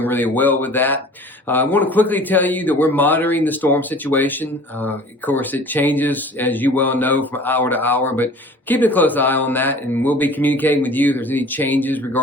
really well with that. I want to quickly tell you that we're monitoring the storm situation. Of course, it changes, as you well know, from hour to hour, but keep a close eye on that, and we'll be communicating with you if there's any changes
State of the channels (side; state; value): both; normal; correlation 0.45